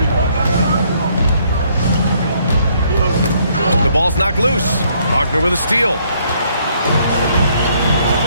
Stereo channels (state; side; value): inverted; both; correlation -0.67